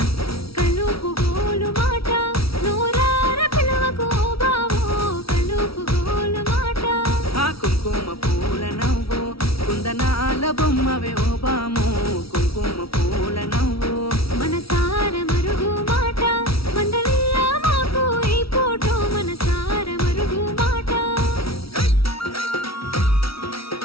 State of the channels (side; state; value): right; late; 0.75 ms